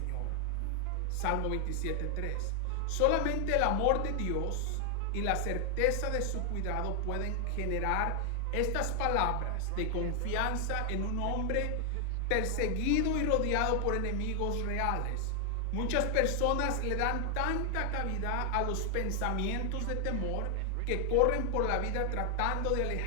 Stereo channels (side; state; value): both; different; correlation 0.00